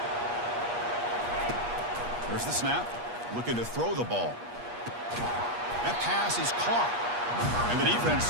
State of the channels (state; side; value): late; left; 8.4 ms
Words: There's the snap. Looking to throw the ball. That pass is caught. And the defense